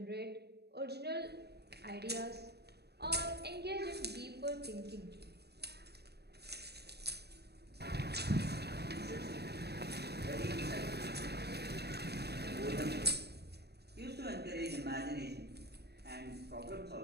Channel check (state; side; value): late; left; 0.47 ms